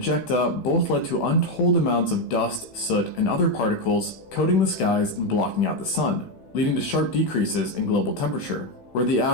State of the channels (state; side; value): late; right; 16 ms